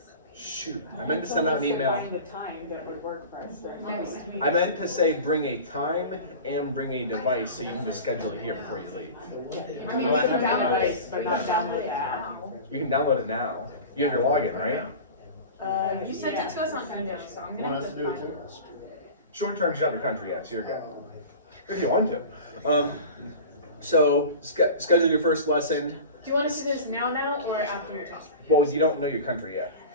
Shoot, I meant to send out an email. Find a time that would work for us next week. I meant to say bring a time and bring a device so you can just schedule it here before you leave. I mean, you can download it, but not download the app. You can download it now. You have your login, right? You sent it to us on email, so I'm gonna have to find it. Short term, you don't have your country yet, so you're good. If you want to. So schedule your first lesson. Do you want us to do this now or after your talk? Well, you don't know your country yet.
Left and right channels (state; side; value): inverted; both; correlation -0.35